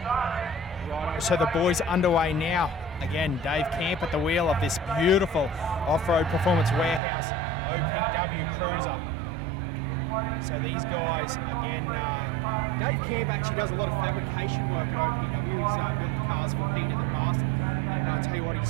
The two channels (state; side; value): drops out; left; at 7.0 s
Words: So the boys underway now. Again, Dave Camp at the wheel of this beautiful off-road performance warehouse OPW cruiser. So these guys, again, Dave Camp actually does a lot of fabrication work at OPW. He's built cars for Pete in the past. And I tell you what,